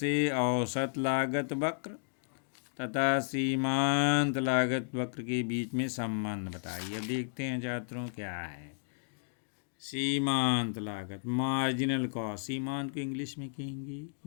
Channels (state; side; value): silent; right; digital silence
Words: औसत लागत वक्र तथा सीमांत लागत वक्र के बीच में संबंध बताइए। अब देखते हैं छात्रों क्या है सीमांत लागत, मार्जिनल कॉस्ट। सीमांत को इंग्लिश में कहेंगे